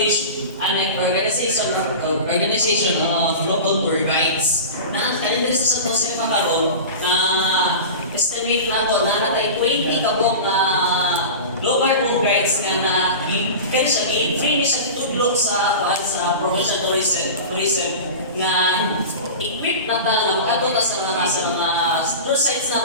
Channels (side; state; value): both; inverted; correlation -0.30